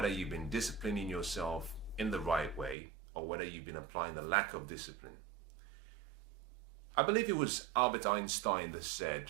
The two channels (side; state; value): left; drops out; at 2.8 s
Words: you've been disciplining yourself in the right way or whether you've been applying the lack of discipline. I believe it was Albert Einstein that said